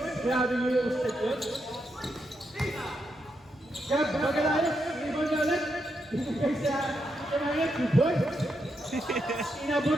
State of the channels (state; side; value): normal; both; correlation 0.82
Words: Grabe mo yung step yun. Gab, magalayos. Rebound niya ulit. Ibigay sa kanya, 2 points.